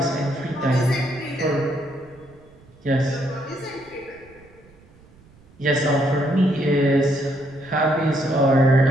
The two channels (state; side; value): noise; right; rumble, 27 dB below the sound